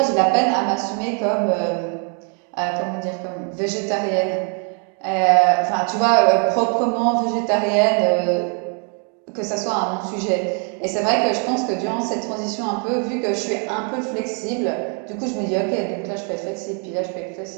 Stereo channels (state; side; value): quieter; left; 39.8 dB